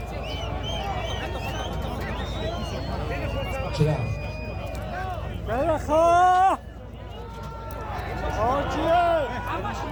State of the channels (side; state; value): both; identical; correlation 1.00